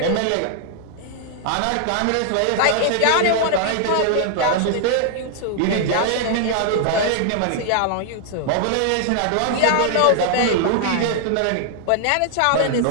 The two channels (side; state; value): both; different; correlation 0.00